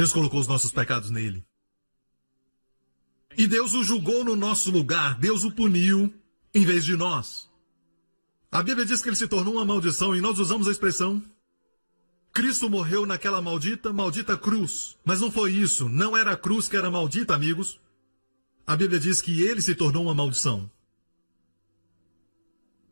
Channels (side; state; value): both; inverted; correlation -1.00